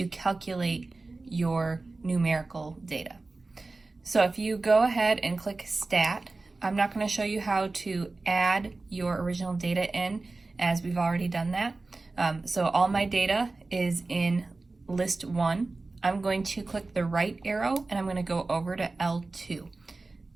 calculate your numerical data. So if you go ahead and click Stat, I'm not going to show you how to add your original data in, as we've already done that. So all my data is in list 1. I'm going to click the right arrow and I'm going to go over to L2.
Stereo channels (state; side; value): quieter; left; 3.4 dB